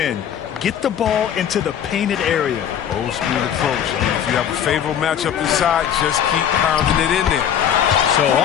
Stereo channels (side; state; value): right; quieter; 9.2 dB